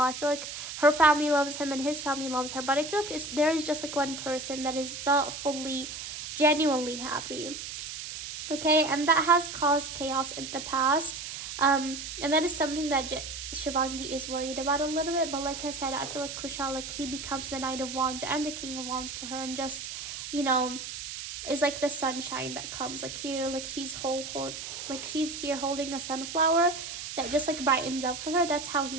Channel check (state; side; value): noise; right; hiss, 8 dB below the sound